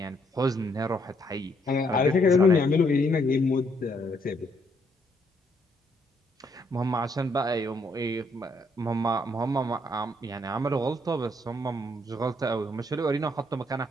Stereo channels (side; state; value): both; normal; correlation 0.71